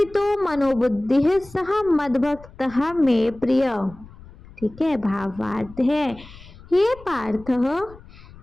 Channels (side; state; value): left; noise; rumble, 20 dB below the sound